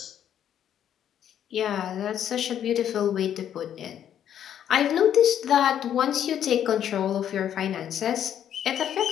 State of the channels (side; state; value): right; quieter; 9.9 dB